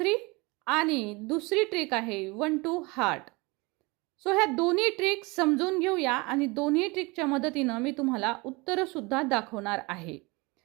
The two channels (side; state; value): left; quieter; 25.6 dB